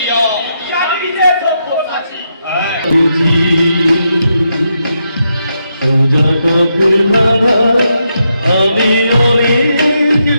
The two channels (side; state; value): both; inverted; correlation -0.82